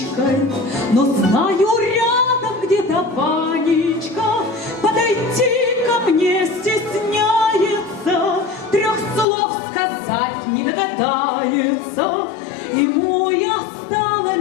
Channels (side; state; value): right; drops out; at 9.2 s